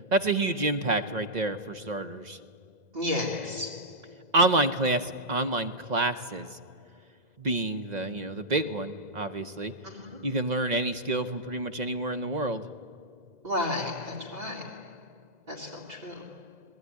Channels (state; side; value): late; left; 2.0 ms